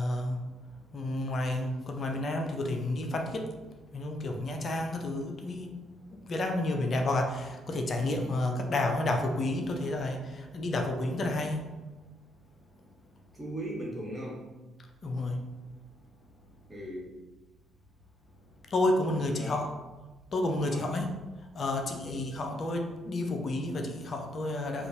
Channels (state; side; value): normal; both; correlation 0.76